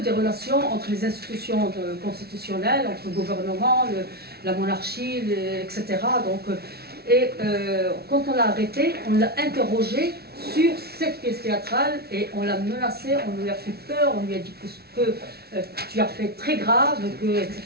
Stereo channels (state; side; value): late; left; 0.45 ms